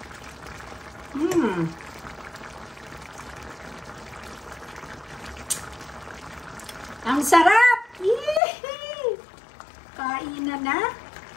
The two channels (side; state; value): right; drops out; at 8.4 s